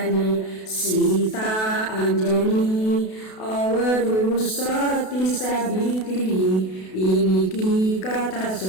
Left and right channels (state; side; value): late; right; 32 ms